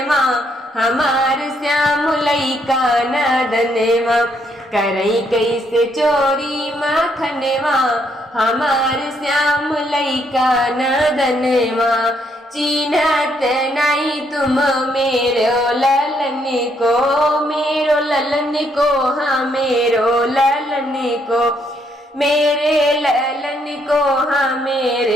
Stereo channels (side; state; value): both; normal; correlation 0.73